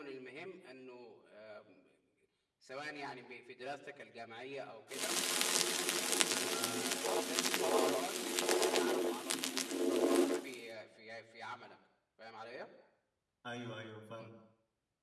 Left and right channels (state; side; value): identical; both; correlation 1.00